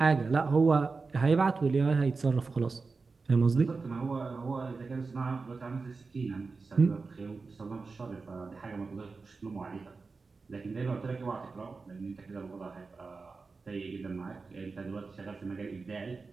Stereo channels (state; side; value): quieter; left; 4.3 dB